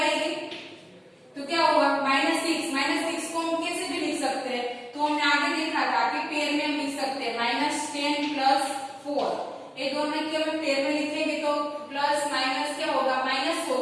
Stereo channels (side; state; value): both; identical; correlation 1.00